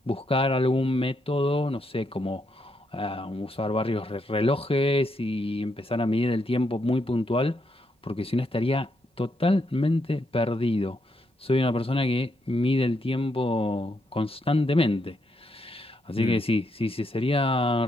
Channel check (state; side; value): normal; both; correlation 0.79